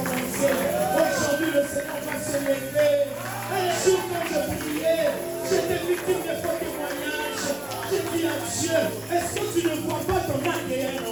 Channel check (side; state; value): left; noise; hum, 27 dB below the sound